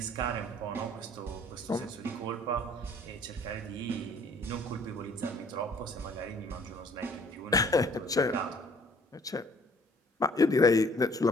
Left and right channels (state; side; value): normal; both; correlation 0.57